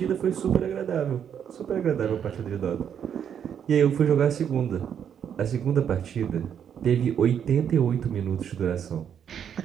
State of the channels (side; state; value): left; quieter; 8.5 dB